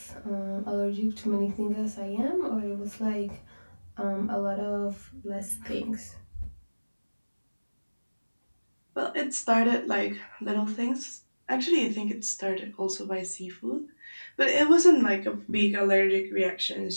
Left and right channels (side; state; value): both; inverted; correlation -1.00